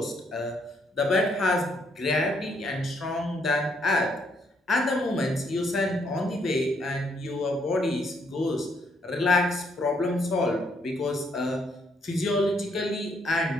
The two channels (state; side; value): normal; both; correlation 0.72